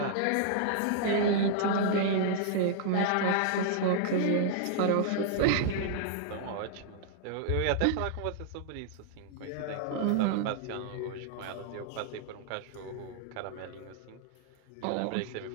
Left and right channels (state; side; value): different; both; correlation -0.01